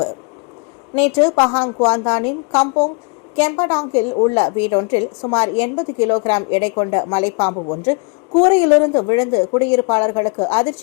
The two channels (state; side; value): quieter; right; 34.6 dB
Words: நேற்று பஹாங் குவாந்தானின் கம்போங் கெம்படாங்கில் உள்ள வீடொன்றில் சுமார் 80 கிலோகிராம் எடை கொண்ட மலைப்பாம்பு ஒன்று கூரையிலிருந்து விழுந்து குடியிருப்பாளர்களுக்கு